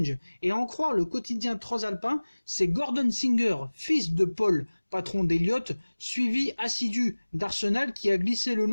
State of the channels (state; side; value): inverted; both; correlation -1.00